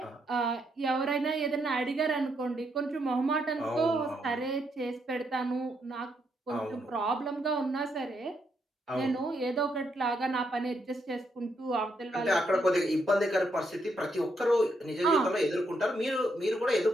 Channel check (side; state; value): both; normal; correlation 0.77